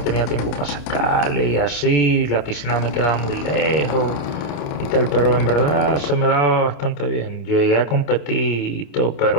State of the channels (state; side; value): late; right; 28 ms